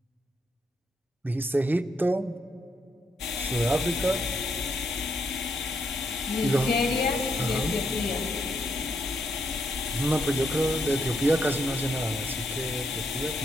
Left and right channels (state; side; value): normal; both; correlation 0.77